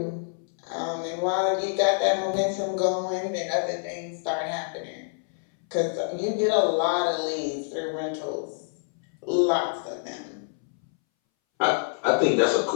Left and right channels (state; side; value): silent; right; 60 dB below the other